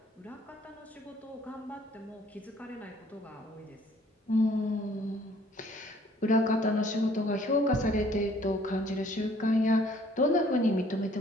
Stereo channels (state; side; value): normal; both; correlation 0.59